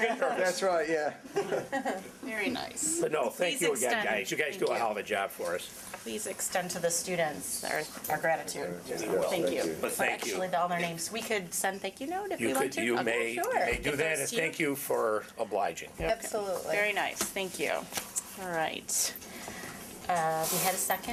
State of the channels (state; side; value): identical; both; correlation 1.00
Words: nervous. That's right, yeah. Very nice. But no, thank Please you again, extend- guys. You guys do a thank hell of a job for us. Please extend to the students our gratitude. Thank you. But thank you. Actually, all their names. We could send thank you note if You we want could, to. you Okay, may sure. do If that, those and two- thank you for obliging. Absolutely. Very nice. Thank you. All right. We had a